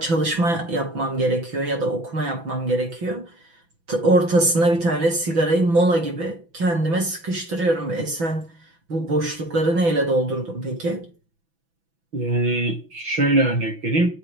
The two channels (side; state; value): left; late; 6.0 ms